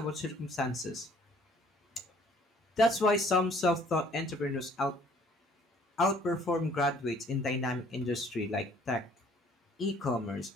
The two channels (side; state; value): both; normal; correlation 0.58